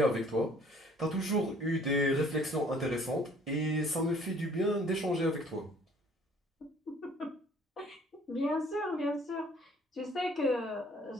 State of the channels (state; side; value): normal; both; correlation 0.57